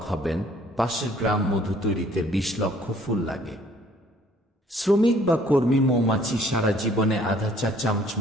হবেন। পাশের গ্রাম মধু তৈরিতে 20 লক্ষ ফুল লাগে। শ্রমিক বা কর্মী মৌমাছি সারা জীবনে আধা চা চামচ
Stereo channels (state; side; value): normal; both; correlation 0.59